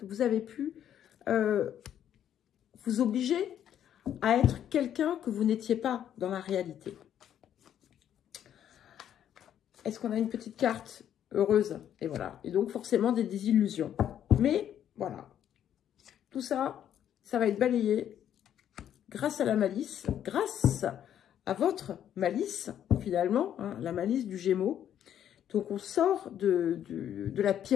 vous avez pu vous obliger à être quelqu'un que vous n'étiez pas dans la réalité. Est-ce qu'on a une petite carte heureuse? Et voilà. Et donc, forcément, des désillusions. Mais, voilà. Tout ça, ça va être balayé grâce à la malice, grâce à votre malice, finalement, hein, la malice du Gémeaux. Donc, on sort de la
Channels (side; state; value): right; quieter; 10.1 dB